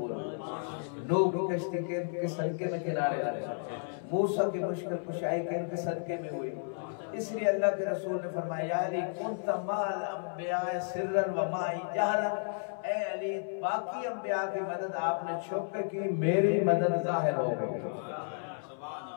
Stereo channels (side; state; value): right; silent; 56 dB below the other